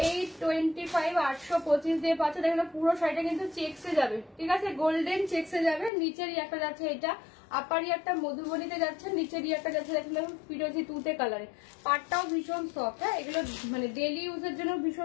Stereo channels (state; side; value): drops out; right; at 5.9 s